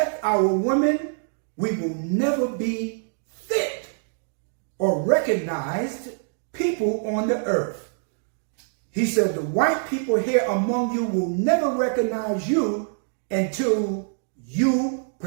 our women, we will never be fit or recognized people on the earth. He said, the white people here among you will never recognize you until you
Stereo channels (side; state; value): left; silent; digital silence